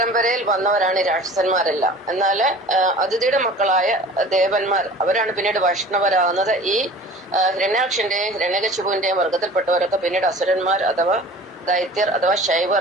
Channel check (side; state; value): both; normal; correlation 0.43